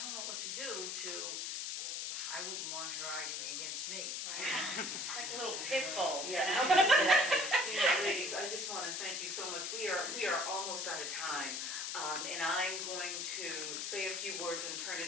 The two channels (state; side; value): noise; left; hiss, 3 dB below the sound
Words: know what to do, to, I wouldn't want her arguing against me. Right. It's like a little pit bull, you Yeah, know? exactly. You know, ladies, I just want to thank you so much. We are almost out of time. And I'm going to say a few words and turn